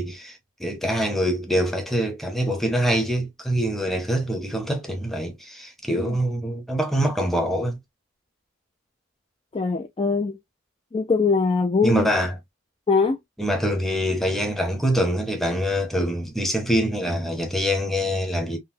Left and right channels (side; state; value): both; normal; correlation 0.69